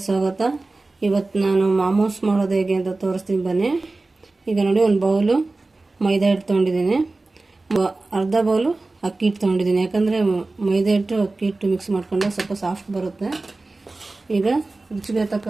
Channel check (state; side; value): quieter; left; 3.3 dB